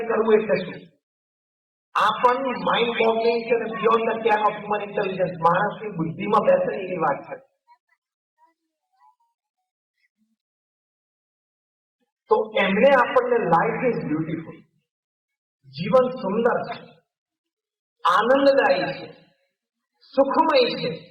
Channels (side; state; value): both; identical; correlation 1.00